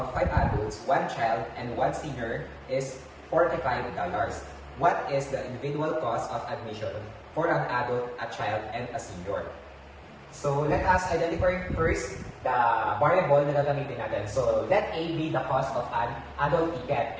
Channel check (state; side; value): identical; both; correlation 1.00